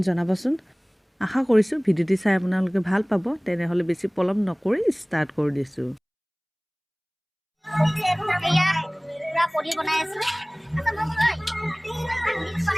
জনাবচোন। আশা কৰিছোঁ ভিডিঅ'টি চাই আপোনালোকে ভাল পাব। তেনেহ'লে বেছি পলম নকৰি ষ্টাৰ্ট কৰি দিছোঁ। পনীৰ বনাই আছো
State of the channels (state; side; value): identical; both; correlation 1.00